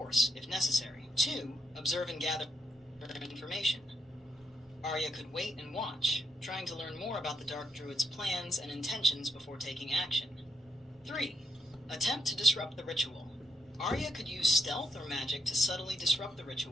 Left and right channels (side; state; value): both; normal; correlation 0.78